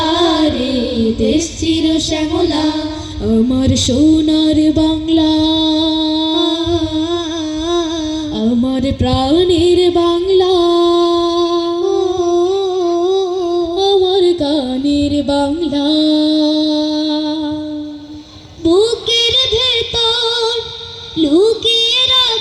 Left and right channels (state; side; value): identical; both; correlation 1.00